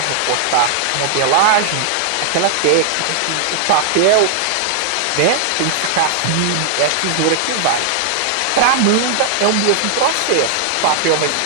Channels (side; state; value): both; different; correlation -0.01